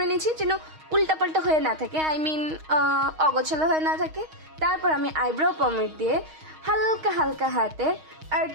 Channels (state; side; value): late; left; 6.4 ms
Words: নিয়েছি যেন উল্টাপাল্টা হয়ে না থাকে, আই মিন অগোছালো হয়ে না থাকে। তারপর আমি আইব্রো পমেড দিয়ে হালকা হালকা হাতে অ্যাড